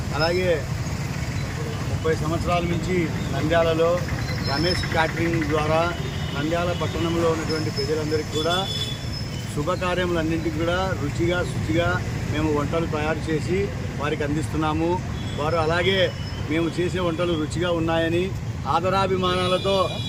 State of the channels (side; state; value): both; identical; correlation 1.00